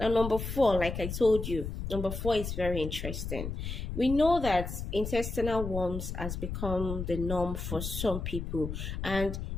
number four, like I told you, number four is very interesting. We know that intestinal worms has become the norm for some people, and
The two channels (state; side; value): noise; left; rumble, 5 dB below the sound